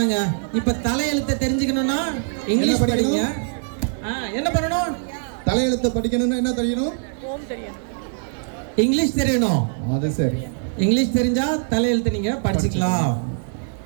இப்ப தலையெழுத்தை தெரிஞ்சுக்கணும்னா இங்கிலீஷ் படிங்க. என்ன பண்ணணும்? தலையெழுத்தை படிக்கணும்னா என்ன தெரியணும்? இங்கிலீஷ் தெரியணும். அது சரி. இங்கிலீஷ் தெரிஞ்சா தலையெழுத்து நீங்க படிச்சுக்கலாம்.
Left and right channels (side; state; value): left; silent; digital silence